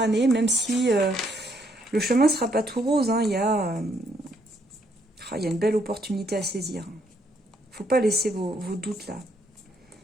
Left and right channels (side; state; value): both; normal; correlation 0.72